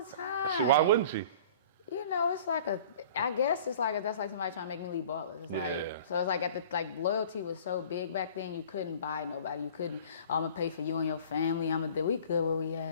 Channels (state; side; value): inverted; both; correlation -0.46